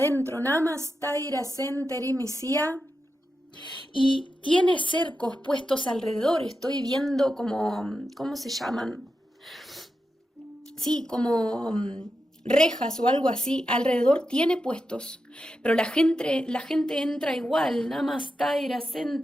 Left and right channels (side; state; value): both; normal; correlation 0.89